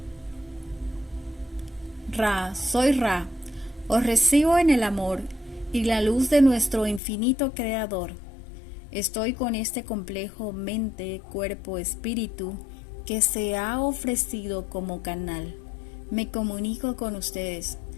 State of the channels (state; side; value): drops out; right; at 7.0 s